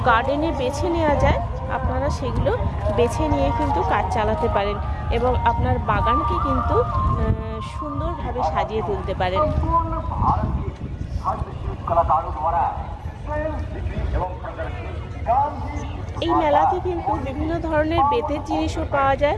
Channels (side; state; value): both; identical; correlation 1.00